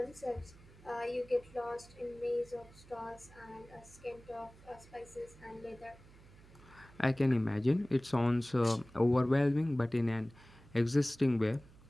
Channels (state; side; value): noise; right; hum, 23 dB below the sound